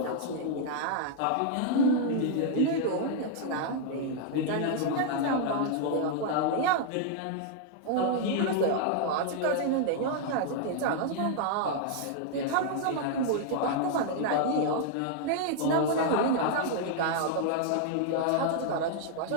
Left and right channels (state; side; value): different; both; correlation 0.00